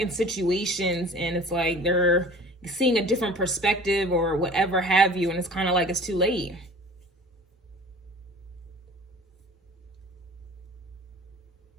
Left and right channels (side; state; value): both; normal; correlation 0.43